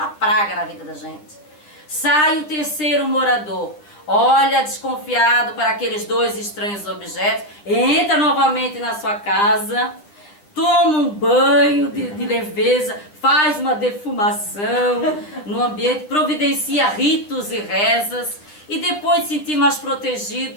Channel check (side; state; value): right; late; 9.8 ms